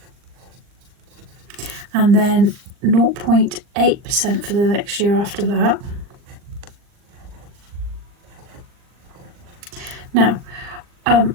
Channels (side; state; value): left; late; 39 ms